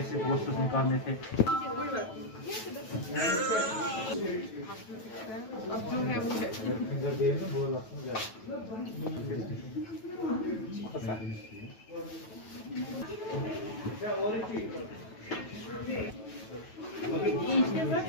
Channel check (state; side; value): late; right; 9.2 ms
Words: पोस्टर्स निकालने थे। अब जो है